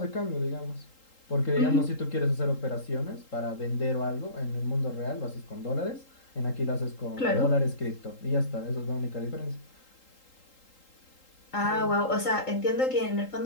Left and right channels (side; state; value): right; late; 3.8 ms